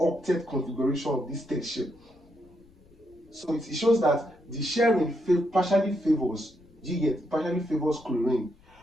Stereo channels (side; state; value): left; noise; rumble, 28 dB below the sound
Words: configuration of this state shell. So it shows that the sharing partially favors Do you get? Partially favors chlorine.